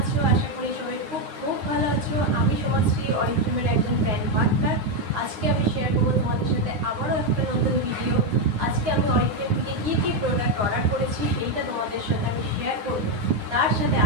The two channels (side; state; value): left; late; 9.7 ms